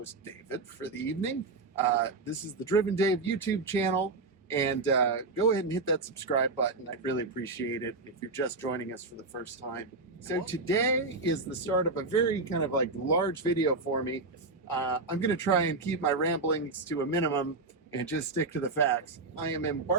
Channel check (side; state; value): left; quieter; 3.5 dB